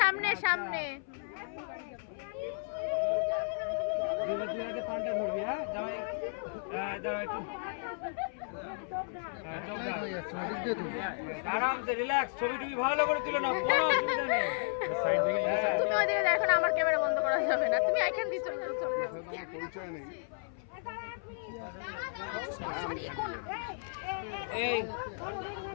সামনে সামনে। তুই একটা পাল্টা ধরবি, হ্যাঁ জামাই, হ্যাঁ দাঁড়া একটু, আরামসে রিল্যাক্স, ছবি টবি ভালো করে তুলে নাও, কোনো অসুবিধা নেই। তুমি ওইদিকে দেখো না, আমার ক্যামেরা বন্ধ করা যাবে না, তুমি এখান দিয়ে চলে যাও। এই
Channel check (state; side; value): silent; right; 56 dB below the other